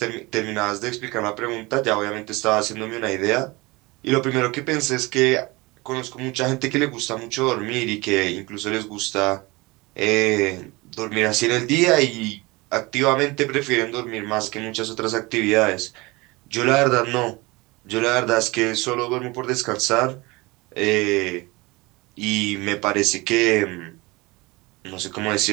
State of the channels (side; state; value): left; quieter; 23.5 dB